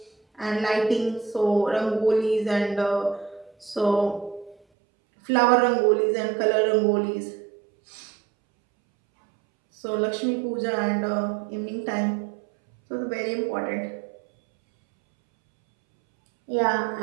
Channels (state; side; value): drops out; left; at 4.5 s